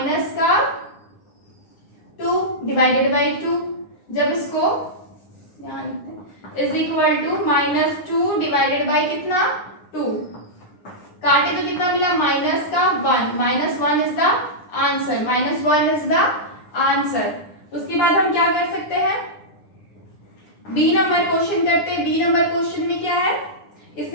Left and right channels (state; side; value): late; right; 9.8 ms